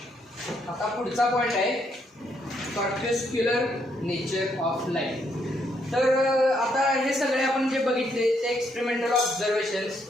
आता पुढचा पॉइंट आहे कॉर्पस्क्युलर नेचर ऑफ लाईट. तर आता हे सगळे आपण जे बघितले ते एक्सपेरिमेंटल ऑब्झर्वेशन्स.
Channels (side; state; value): both; normal; correlation 0.74